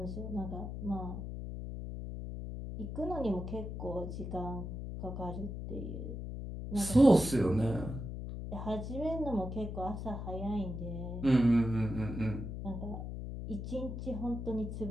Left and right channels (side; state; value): left; noise; hum, 6 dB below the sound